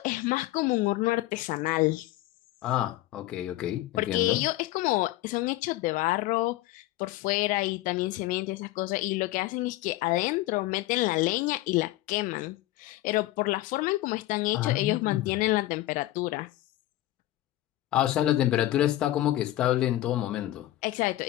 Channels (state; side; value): quieter; right; 16.1 dB